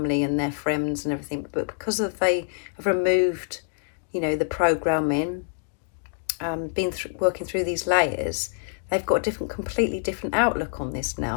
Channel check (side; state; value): right; silent; 61 dB below the other